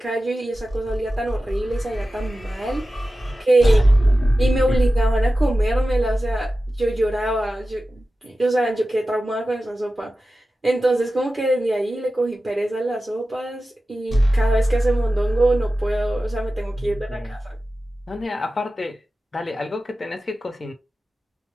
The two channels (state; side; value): normal; both; correlation 0.94